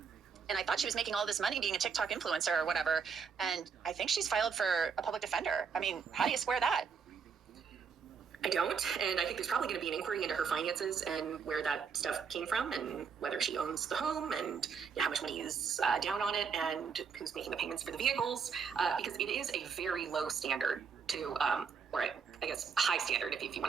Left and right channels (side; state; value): left; quieter; 6.1 dB